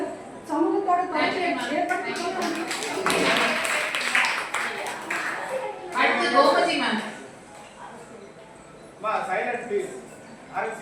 சமூகத்தோடு தொடர்ச்சியை ஏற்படுத்தி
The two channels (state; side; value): identical; both; correlation 1.00